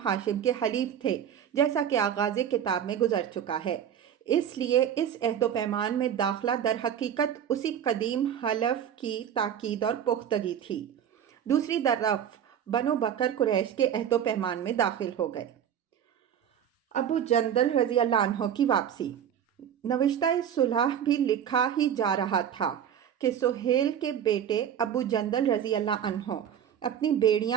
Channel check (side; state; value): left; quieter; 9.2 dB